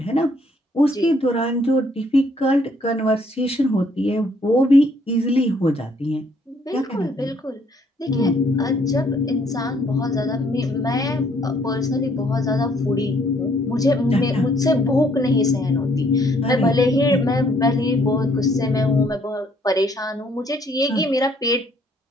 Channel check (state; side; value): normal; both; correlation 0.66